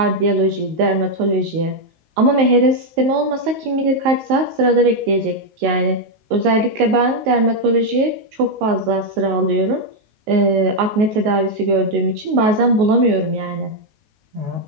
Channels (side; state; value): left; late; 19 ms